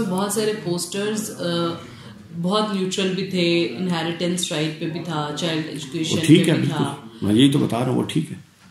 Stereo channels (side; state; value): both; identical; correlation 1.00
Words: बहुत सारे पोस्टर्स बहुत न्यूट्रल भी थे, इनहेरिटेंस राइट पे भी था, चाइल्ड एजुकेशन पे भी था, मैं यही तो बता रहा हूँ, वो ठीक है।